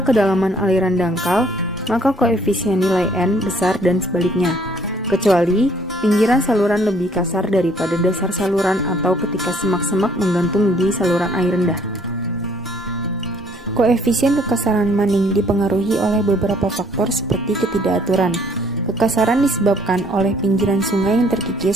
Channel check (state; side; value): normal; both; correlation 0.61